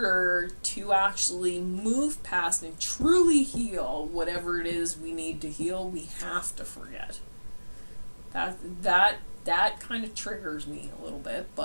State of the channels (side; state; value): both; inverted; correlation -1.00